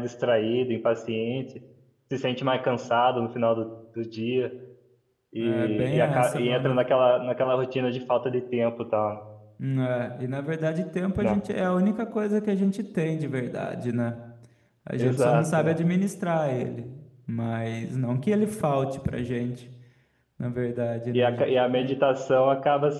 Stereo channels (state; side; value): identical; both; correlation 1.00